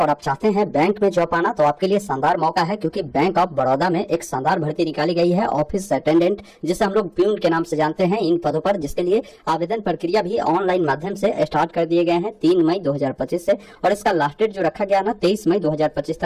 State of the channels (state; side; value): identical; both; correlation 1.00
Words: आप चाहते हैं बैंक में जॉब पाना तो आपके लिए शानदार मौका है, क्योंकि बैंक ऑफ बड़ौदा में एक शानदार भर्ती निकाली गई है ऑफिस अटेंडेंट, जिसे हम लोग प्यून के नाम से जानते हैं। इन पदों पर जिसके लिए आवेदन प्रक्रिया भी ऑनलाइन माध्यम से स्टार्ट कर दिए गए हैं 3 मई 2025 से, और इसका लास्ट डेट जो रखा गया ना 23 मई 2025